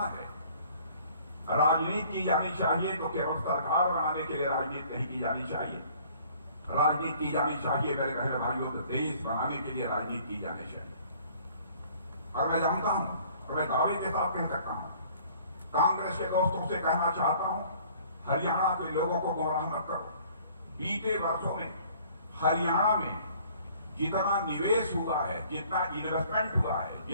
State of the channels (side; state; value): both; inverted; correlation -0.55